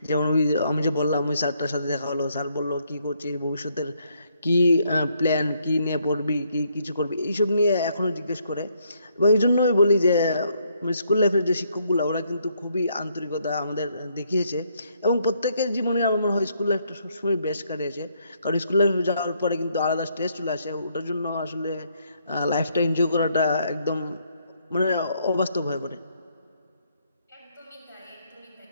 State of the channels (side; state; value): both; inverted; correlation -0.72